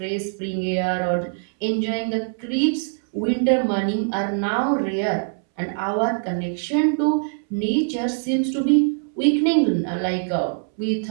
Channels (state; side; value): silent; left; 64 dB below the other